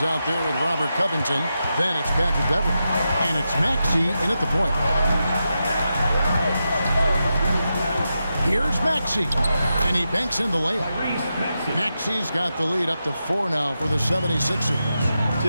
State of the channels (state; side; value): inverted; both; correlation -0.88